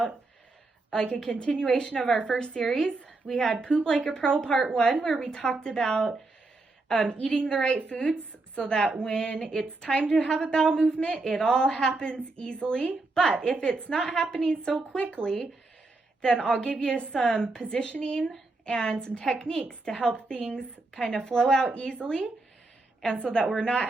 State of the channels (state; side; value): quieter; left; 3.3 dB